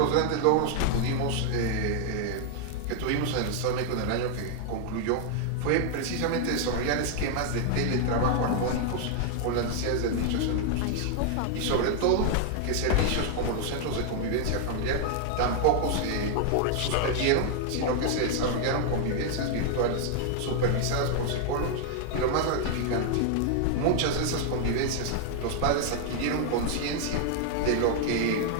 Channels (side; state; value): both; different; correlation 0.00